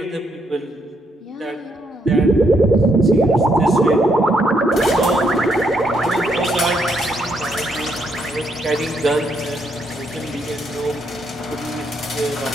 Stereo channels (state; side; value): normal; both; correlation 0.75